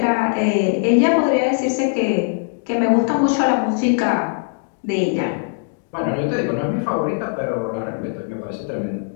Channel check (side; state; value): right; silent; 64 dB below the other